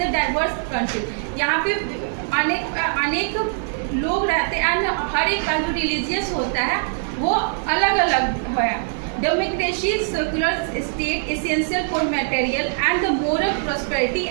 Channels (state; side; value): silent; left; digital silence